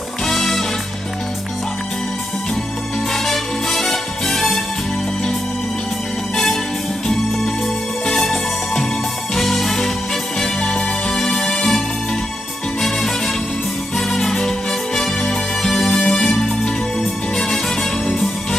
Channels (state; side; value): normal; both; correlation 0.86